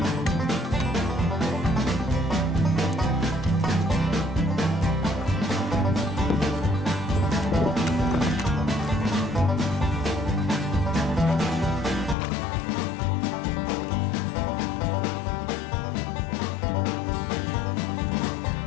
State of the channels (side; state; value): right; drops out; at 12.2 s